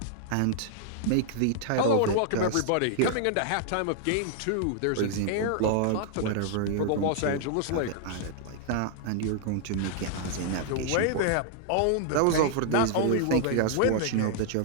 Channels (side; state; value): both; different; correlation 0.00